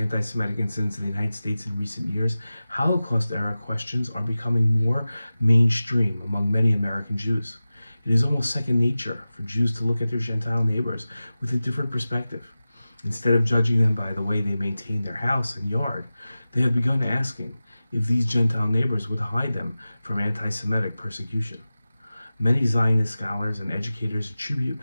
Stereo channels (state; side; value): inverted; both; correlation -0.96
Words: incidents in the United States in recent years, Holocaust era questions are becoming more mainstream among many American Jews. It is almost second nature for Jews to look at their Gentile neighbors with a different perspective. Instead of judging them by the way they maintain their house and yard, they have begun asking if these Gentile neighbors would hide them from anti-Semitic persecution. Many Zionist scholars and educators attribute